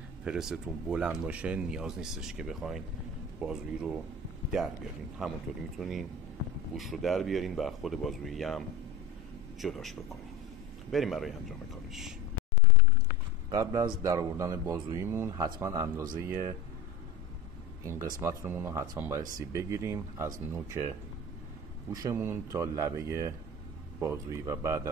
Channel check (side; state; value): right; quieter; 3.1 dB